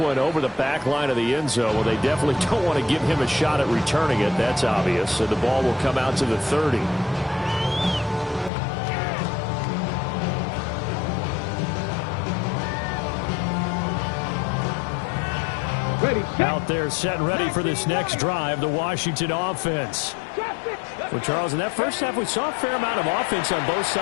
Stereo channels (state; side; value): drops out; right; at 8.5 s